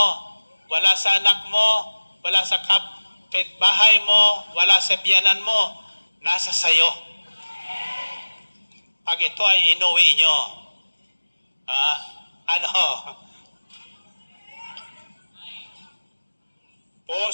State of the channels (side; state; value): both; inverted; correlation -1.00